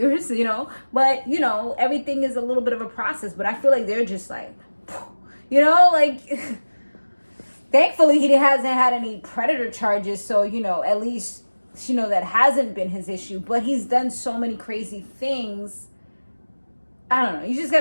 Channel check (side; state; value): both; inverted; correlation -1.00